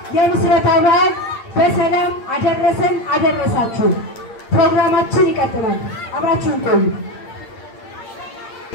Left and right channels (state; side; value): late; right; 8.7 ms